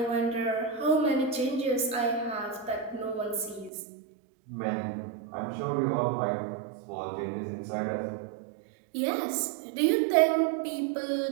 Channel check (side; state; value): left; drops out; at 3.7 s